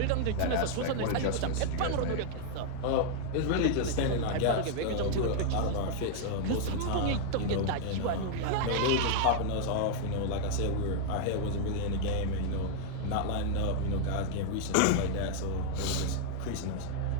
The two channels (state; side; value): different; both; correlation -0.01